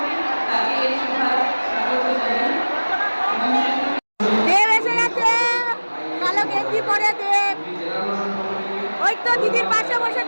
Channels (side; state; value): both; inverted; correlation -1.00